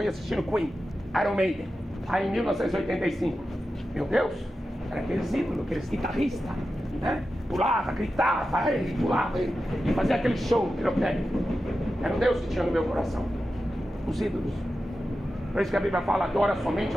assistindo Queen, Iron Maiden. Aí em 1985. Meu Deus, era aqueles ídolos, aqueles guitarristas, né? Pulava, gritava, pulava e fazia aquele show pirotécnico. Era um Deus que tinha no meu coração. Os ídolos. Por isso que a Bíblia fala, adora somente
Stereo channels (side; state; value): both; normal; correlation 0.92